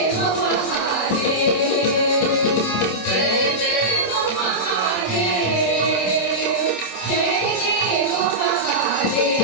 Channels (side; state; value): right; late; 27 ms